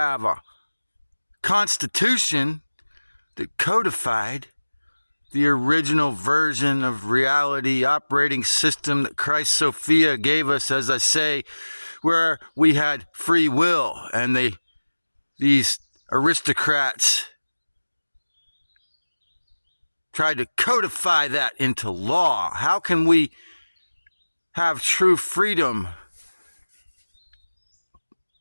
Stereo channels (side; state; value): both; inverted; correlation -1.00